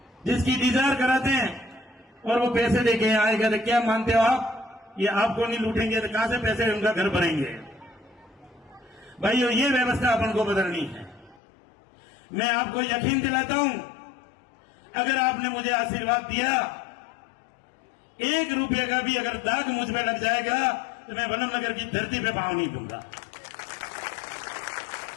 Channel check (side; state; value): right; drops out; at 11.4 s